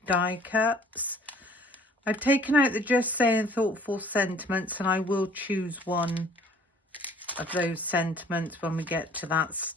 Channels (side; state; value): both; normal; correlation 0.54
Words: die cuts. I've taken out the Just Saying Thoughtful sentiments and I will choose one of those sentiments when we get to that